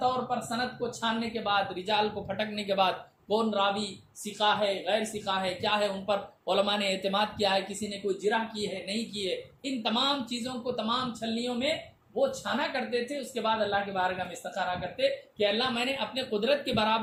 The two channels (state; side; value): identical; both; correlation 1.00